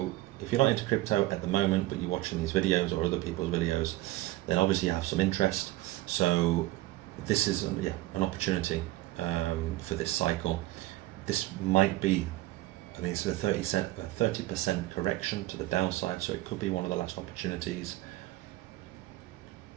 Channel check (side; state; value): left; quieter; 17.6 dB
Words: if you're not into crypto at the moment, but you're watching these videos or other people's videos, then obviously you have some interest. So this is an opportunity for this cycle. This might be, I mean, it's a 30% correction to the downside, so it could be one of the last opportunities